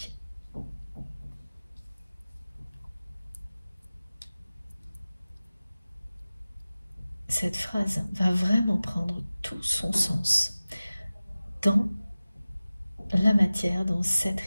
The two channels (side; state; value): both; inverted; correlation -0.97